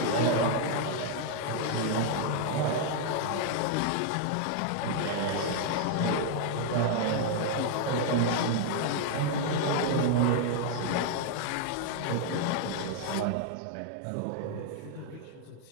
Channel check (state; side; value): different; both; correlation 0.00